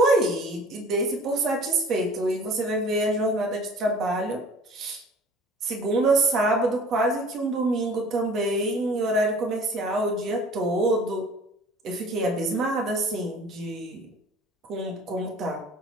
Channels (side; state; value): both; normal; correlation 0.47